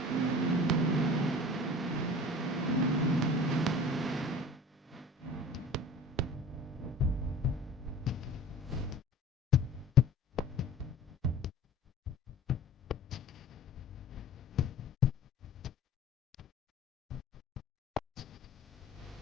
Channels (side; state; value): both; normal; correlation 0.42